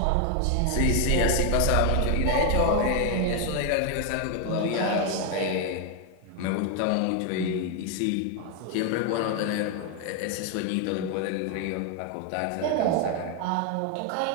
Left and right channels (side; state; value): both; different; correlation 0.01